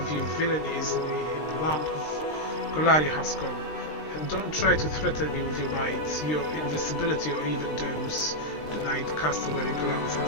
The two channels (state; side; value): late; right; 20 ms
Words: your villainy is in the land of Golaria has come. And don't try to threaten me with your might, your invisibility, or even those. The knight cast a wary glance at